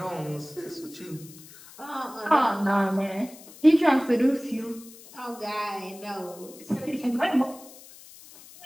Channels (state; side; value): noise; left; hiss, 19 dB below the sound